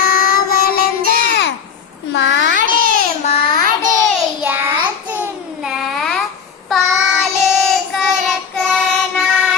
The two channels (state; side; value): quieter; right; 6.7 dB